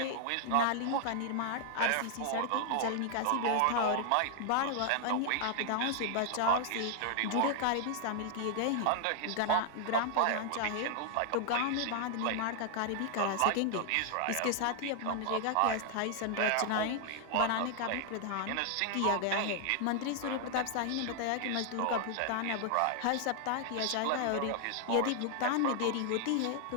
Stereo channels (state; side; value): different; both; correlation 0.00